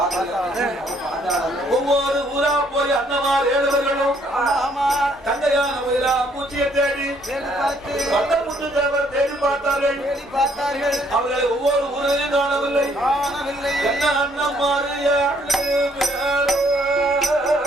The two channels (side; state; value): both; normal; correlation 0.66